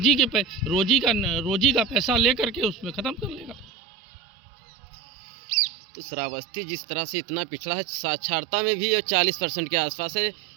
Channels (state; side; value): drops out; left; at 3.7 s